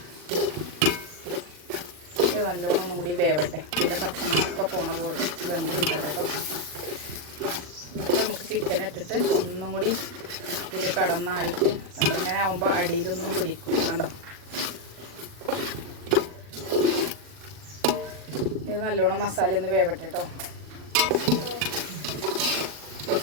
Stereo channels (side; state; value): left; late; 40 ms